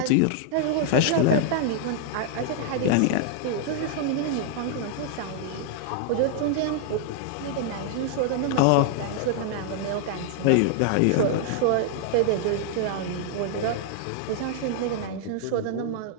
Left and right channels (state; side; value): different; both; correlation 0.00